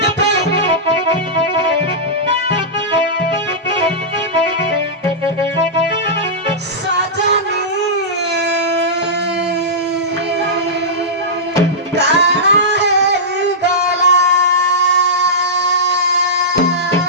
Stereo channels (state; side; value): normal; both; correlation -0.14